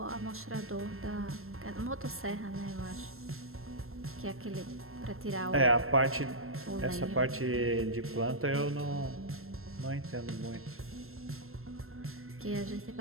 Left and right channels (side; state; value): left; late; 0.62 ms